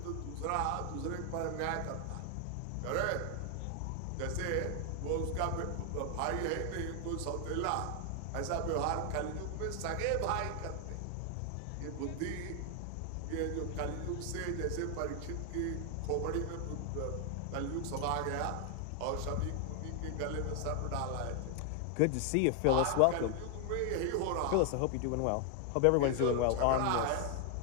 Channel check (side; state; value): both; different; correlation 0.00